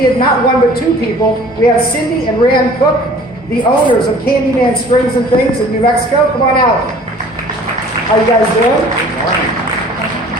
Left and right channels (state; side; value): normal; both; correlation 0.49